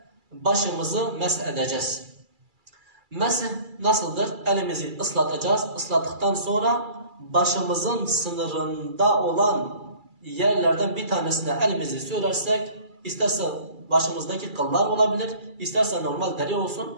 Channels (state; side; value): late; left; 2.3 ms